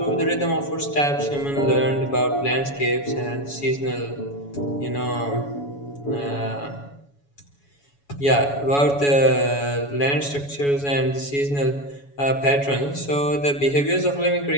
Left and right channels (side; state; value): right; late; 7.1 ms